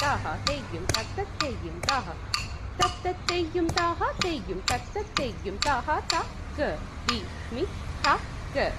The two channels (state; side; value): identical; both; correlation 1.00